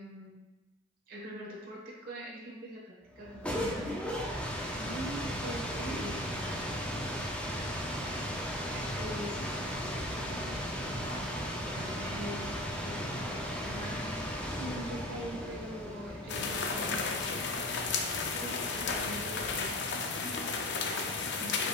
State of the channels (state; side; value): normal; both; correlation 0.35